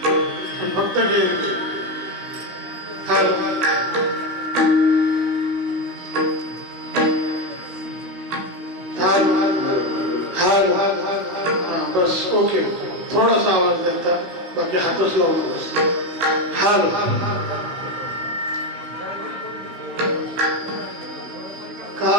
पण फक्त घे. हाल हाल हाल बस ओके. थोडासा आवाज द्यायचा, बाकी हातच लावून बस. हाल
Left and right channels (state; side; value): late; left; 16 ms